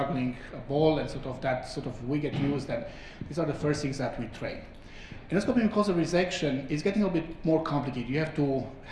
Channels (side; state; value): both; identical; correlation 1.00